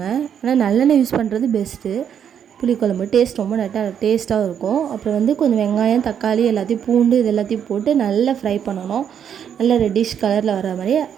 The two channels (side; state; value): left; quieter; 8.5 dB